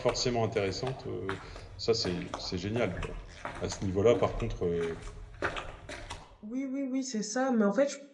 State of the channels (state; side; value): identical; both; correlation 1.00